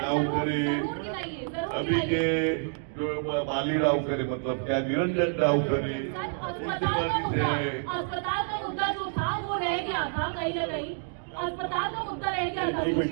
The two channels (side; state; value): left; silent; 59 dB below the other